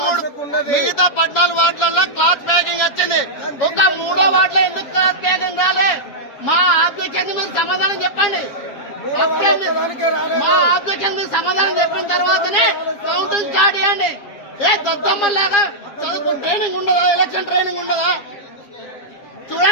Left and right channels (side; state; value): right; late; 7.3 ms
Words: వార్డులలో క్లాత్ ప్యాకింగ్ వచ్చింది, ఒక 3వ వార్డులో ఎందుకు క్లాత్ ప్యాకింగ్ రాలే? మా ఆబ్జెక్షన్ మీరు సమాధానం చెప్పండి. మా ఆబ్జెక్షన్ మీరు సమాధానం చెప్పిన తర్వాతనే కౌంటింగ్ స్టార్ట్ చేయండి. ఏ దద్దమ్మలాగా చదువు ట్రైనింగ్ ఉండదా? ఎలక్షన్ ట్రైనింగ్ ఉండదా?